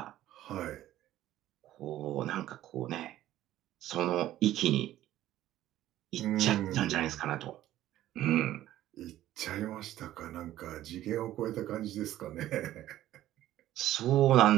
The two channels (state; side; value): quieter; left; 13.7 dB